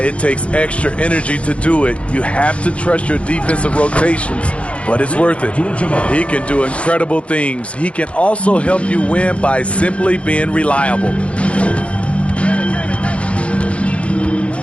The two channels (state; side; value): late; right; 0.062 ms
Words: it takes extra energy to do it. You have to trust your defensive rotations, but it's worth it. He can do incredible things. He can also help you win by simply being reliable.